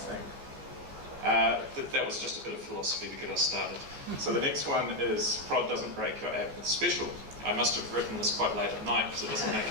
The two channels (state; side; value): late; left; 14 ms